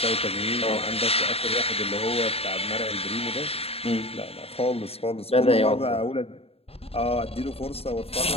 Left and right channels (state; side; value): late; right; 0.29 ms